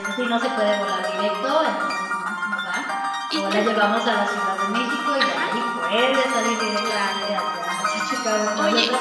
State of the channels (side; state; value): both; identical; correlation 1.00